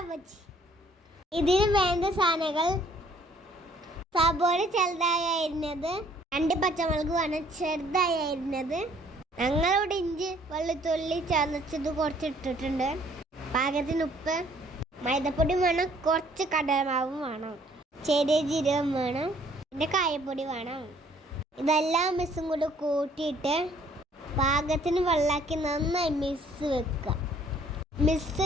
ബജ്ജി. ഇതിന് വേണ്ട സാധനങ്ങൾ: സബോള ചെറുതായി അരിഞ്ഞത്, 2 പച്ചമുളക് വേണം ചെറുതായി അരിഞ്ഞത്, ഞങ്ങളിവിടെ ഇഞ്ചി വെളുത്തുള്ളി ചതച്ചത് കുറച്ച് ഇട്ടിട്ടുണ്ട്, പാകത്തിന് ഉപ്പ്, മൈദപ്പൊടി വേണം, കുറച്ച് കടലമാവും വേണം, ചെറിയ ജീരകം വേണം, പിന്നെ കായപ്പൊടി വേണം. ഇതെല്ലാം മിക്സും കൂടി കൂട്ടിയിട്ട് പാകത്തിന് വെള്ളമാക്കി നന്നായി മിക്സ്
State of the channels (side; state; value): both; normal; correlation 0.60